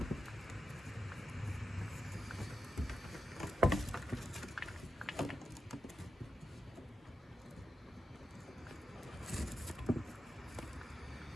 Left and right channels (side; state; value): both; normal; correlation 0.89